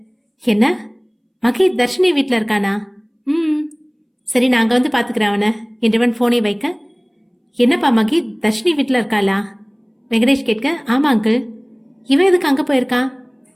என்ன மகி தர்ஷினி வீட்டில் இருக்கானா? சரி நான் அங்கே வந்து பார்த்துக்கிறேன் அவனை என்றவன் ஃபோனை வைக்க, என்னப்பா மகி தர்ஷினி வீட்டில் இருக்காளா? வெங்கடேஷ் கேட்க, ஆமா அங்கிள். இவன் எதுக்கு அங்கே போயிருக்கான்?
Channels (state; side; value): identical; both; correlation 1.00